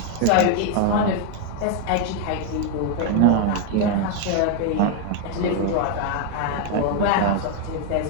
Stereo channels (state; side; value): different; both; correlation 0.00